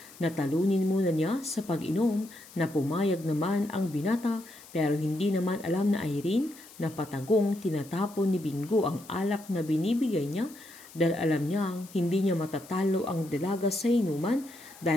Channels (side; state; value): left; noise; hiss, 20 dB below the sound